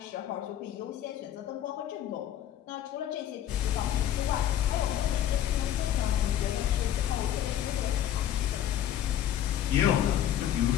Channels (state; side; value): quieter; right; 11.2 dB